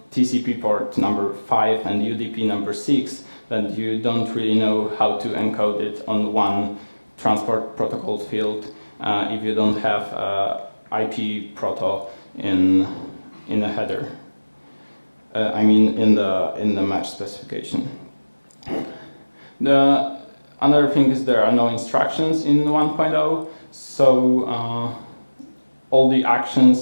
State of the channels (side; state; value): both; inverted; correlation -1.00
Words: TCP port number 5 and UDP number 6, then you don't really know how to encode it on one transport protocol field if you don't have IP proto in the header. I mean in the match specification. The another thing is there are no instructions in 1.0, so all the